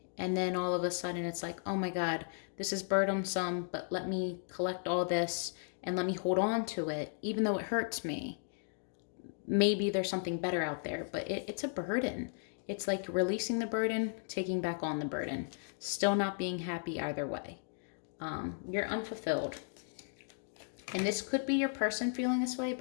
And then all of a sudden it's like, oh my God, this is burdensome, but let me collect all this and let me hold on to it, even though it hurts me. Maybe there's something better out there, but it's a burden. It's like releasing the burden, taking back on the burden, still not being happy either way. You're unfulfilled. And this could be your person feeling this way,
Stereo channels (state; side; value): silent; right; digital silence